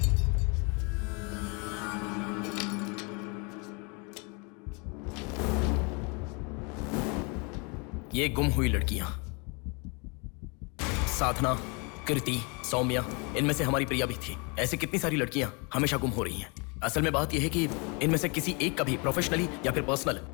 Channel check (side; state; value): right; quieter; 31.9 dB